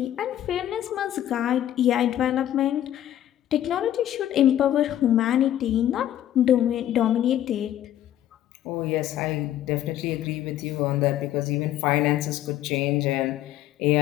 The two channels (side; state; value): right; quieter; 12.1 dB